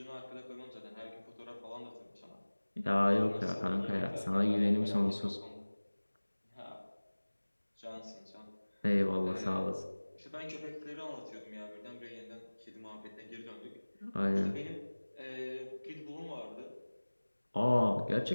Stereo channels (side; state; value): both; inverted; correlation -1.00